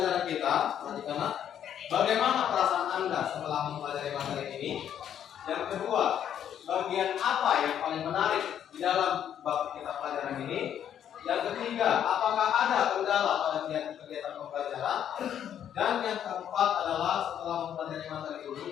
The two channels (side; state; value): right; quieter; 9.6 dB